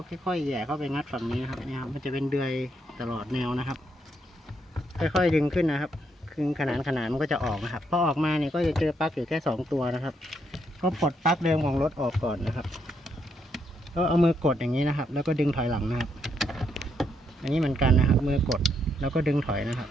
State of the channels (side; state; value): both; normal; correlation 0.76